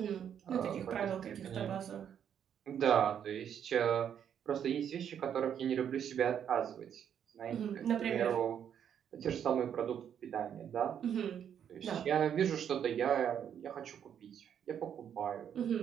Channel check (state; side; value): quieter; left; 8.8 dB